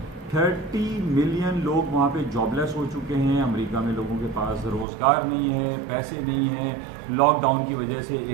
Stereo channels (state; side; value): drops out; left; at 4.9 s